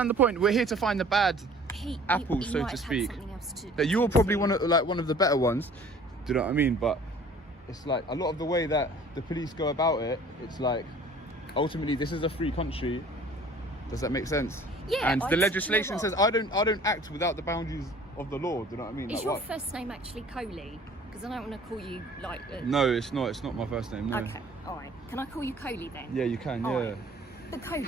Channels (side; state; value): both; normal; correlation 0.50